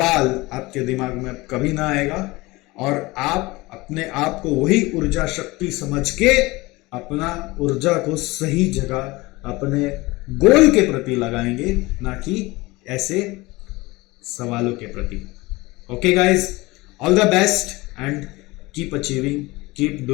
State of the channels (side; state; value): right; quieter; 21.9 dB